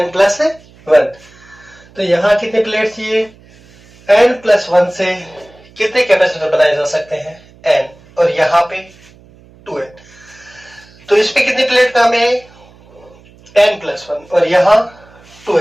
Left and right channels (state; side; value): noise; right; hum, 26 dB below the sound